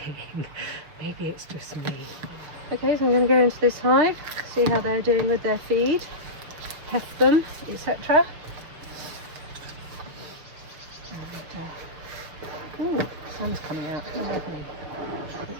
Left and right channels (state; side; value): late; left; 6.5 ms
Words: Maybe it's just me. Okay, so I'm going to go into this hive, see how they're doing with their feed, heft them, etc. And ooh, sun's coming out. Oh, lovely.